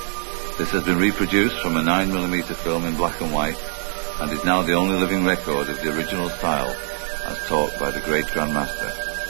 This has been reproduced from a 9mm film in black and white and is now the only living record of the original style as taught by the great Grandmaster.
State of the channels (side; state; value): left; silent; 64 dB below the other